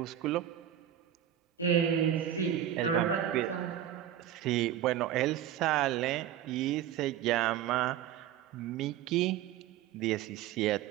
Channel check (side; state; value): left; quieter; 11.0 dB